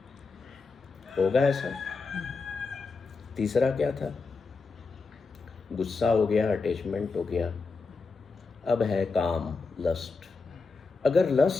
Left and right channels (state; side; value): quieter; right; 4.3 dB